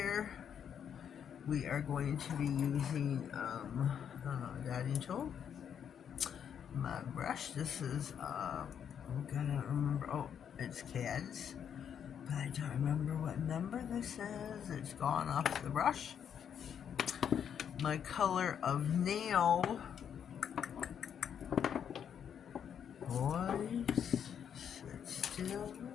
We are going to be using a dotting tool. My brush. This is I'm gonna remember. Oh, it's CAD's, but I don't remember what number this is. It's gone off the brush. My color of nail. Boys, sit still.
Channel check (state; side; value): quieter; right; 8.3 dB